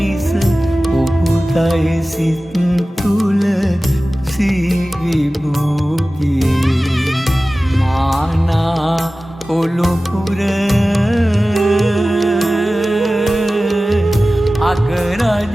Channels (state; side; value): normal; both; correlation 0.96